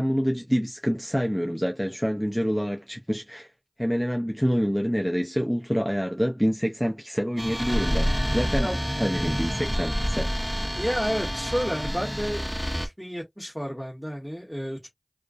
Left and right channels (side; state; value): both; identical; correlation 1.00